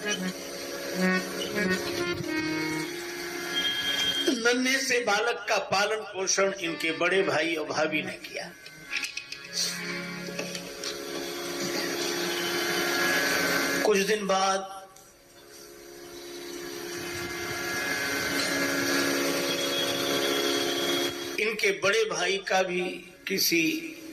नन्हे से बालक का पालन पोषण इनके बड़े भाई और भाभी ने किया। कुछ दिन बाद इनके बड़े भाई का भी किसी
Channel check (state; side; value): identical; both; correlation 1.00